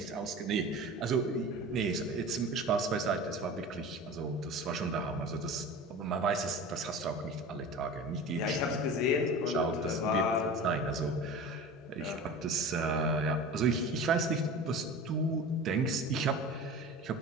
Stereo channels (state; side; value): normal; both; correlation 0.35